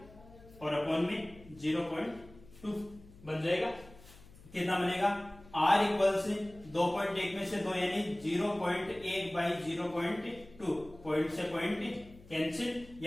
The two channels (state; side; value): noise; left; hum, 22 dB below the sound